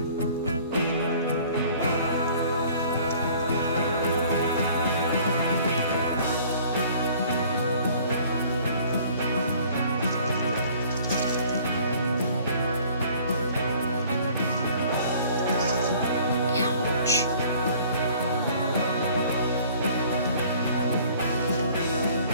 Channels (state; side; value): inverted; both; correlation -0.53